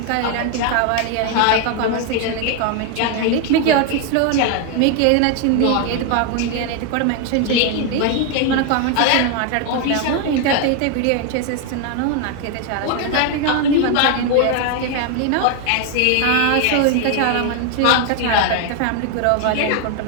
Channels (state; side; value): different; both; correlation 0.01